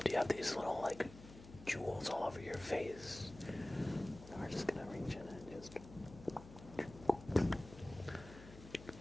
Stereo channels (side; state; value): left; noise; hum, 16 dB below the sound